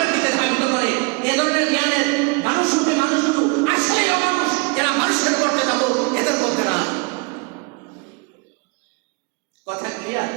দিকে ধাবিত করে। এ ধরনের জ্ঞানের মানুষগুলো আসলেই অমানুষ, এরা মানুষের করতে যাবো, এদের মধ্যে না। কথা ক্লিয়ার?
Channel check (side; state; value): left; quieter; 30.1 dB